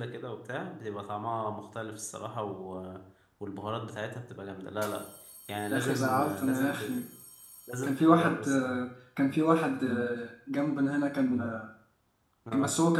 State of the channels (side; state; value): both; identical; correlation 1.00